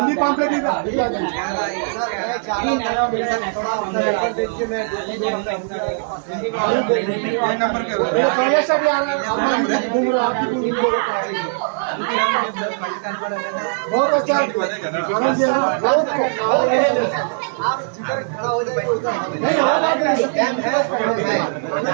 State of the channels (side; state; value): left; silent; 63 dB below the other